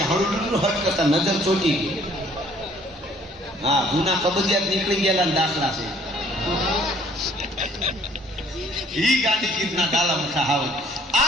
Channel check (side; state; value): both; normal; correlation 0.59